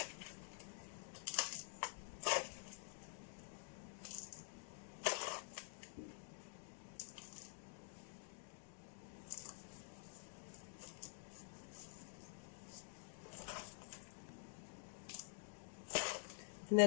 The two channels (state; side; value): silent; right; digital silence